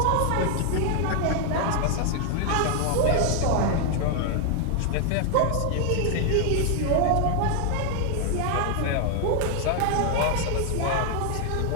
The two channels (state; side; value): different; both; correlation 0.00